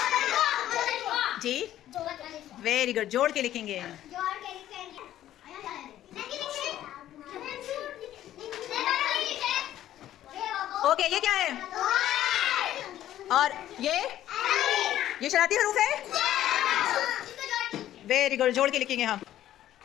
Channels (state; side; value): quieter; right; 12.6 dB